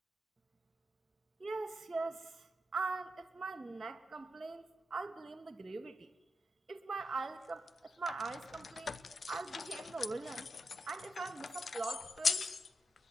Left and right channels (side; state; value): both; normal; correlation 0.87